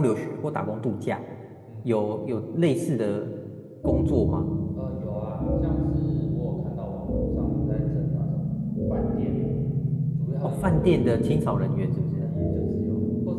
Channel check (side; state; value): both; identical; correlation 1.00